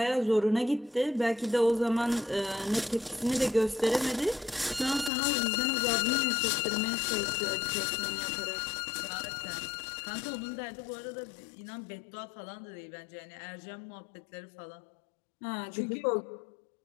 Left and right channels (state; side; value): drops out; right; at 5.1 s